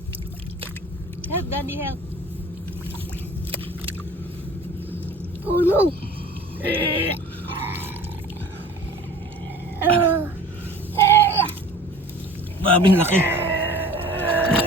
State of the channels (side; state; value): both; normal; correlation 0.44